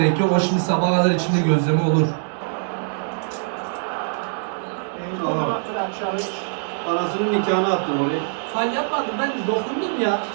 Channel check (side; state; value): left; silent; digital silence